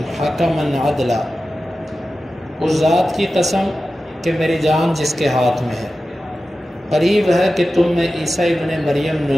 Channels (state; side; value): normal; both; correlation 0.94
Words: حکما عدلا، اس ذات کی قسم کہ میری جان جس کے ہاتھ میں ہے، قریب ہے کہ تم میں عیسیٰ ابن مریم